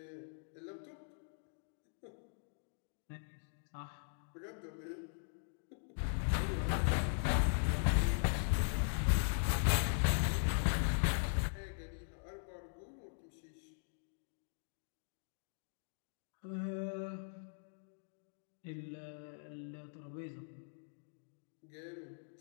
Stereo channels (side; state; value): right; silent; digital silence